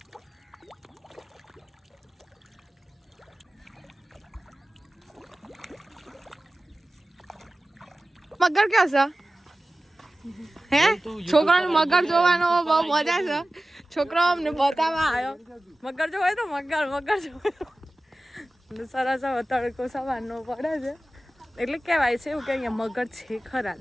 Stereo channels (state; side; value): normal; both; correlation 0.96